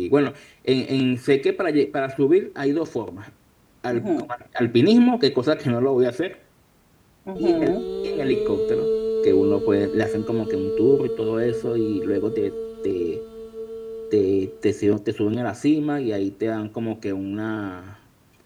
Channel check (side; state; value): both; identical; correlation 1.00